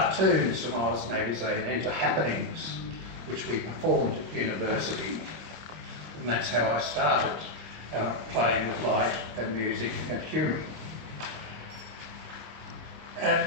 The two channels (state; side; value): late; left; 26 ms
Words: from Oz magazine into happenings, which we performed at university. And that's how I started playing with light and music and humour.